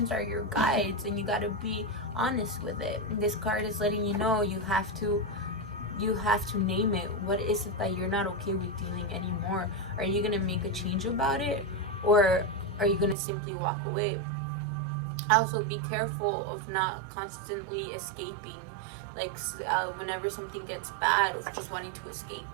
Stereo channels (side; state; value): left; drops out; at 13.2 s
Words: are your guides, and you got to be honest with it. This card is letting you know you have to name it. What is it that you're not okay with dealing anymore? Are you going to make a change about it, or are you going to simply walk away? Also, be careful of not constantly escaping. Like, whenever something gets bad, of just wanting to escape,